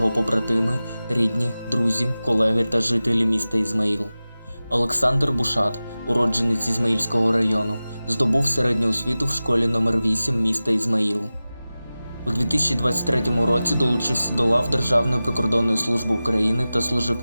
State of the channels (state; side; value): inverted; both; correlation -0.96